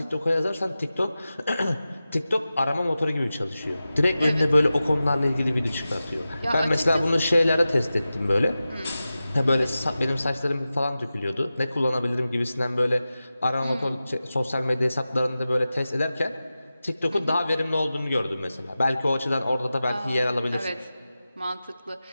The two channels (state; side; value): inverted; both; correlation -0.94